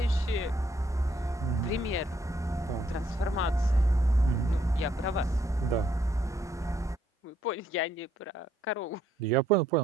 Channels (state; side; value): normal; both; correlation 0.70